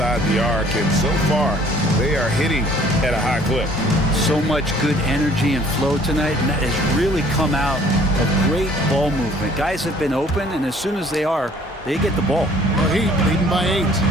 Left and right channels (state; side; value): normal; both; correlation 0.56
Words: the arc, and so far they are hitting at a high clip. So much good energy and flow tonight, and that has really come out of great ball movement. Guys have been open, and as soon as they are, they get the ball. The Heat leading by 8.